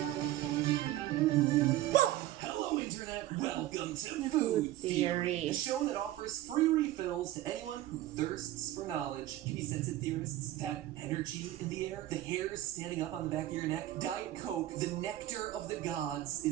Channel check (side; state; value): left; quieter; 14.8 dB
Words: Hello, Internet. Welcome to Food Theory, a show that offers free refills to anyone who thirsts for knowledge. Give me sense of theorists. That energy in the air, the hairs standing up on the back of your neck. Diet Coke, the nectar of the gods,